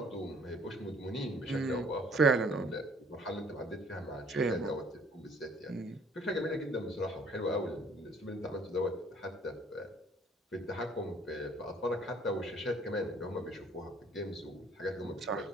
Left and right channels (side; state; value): both; normal; correlation 0.58